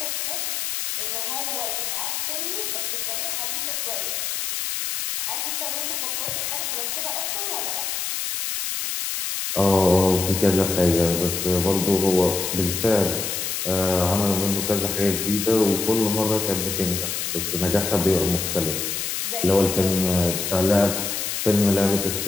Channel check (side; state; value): left; noise; hiss, 2 dB below the sound